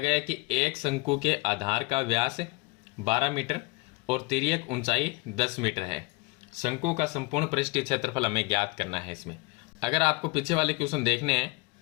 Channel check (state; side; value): quieter; right; 25.3 dB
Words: है कि एक शंकु के आधार का व्यास 12 मीटर और तिर्यक ऊंचाई 10 मीटर है। शंकु का संपूर्ण पृष्ठीय क्षेत्रफल हमें ज्ञात करना है। इसमें अगर आपको पीछे वाले क्वेश्चन देखने हैं